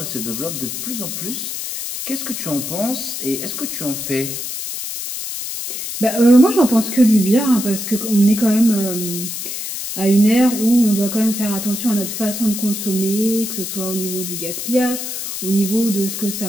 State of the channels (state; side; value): noise; left; hiss, 6 dB below the sound